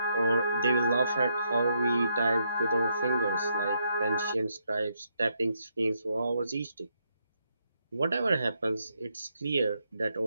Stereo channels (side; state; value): both; inverted; correlation -0.77